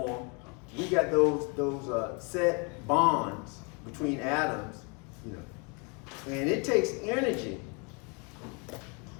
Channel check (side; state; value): right; quieter; 33.1 dB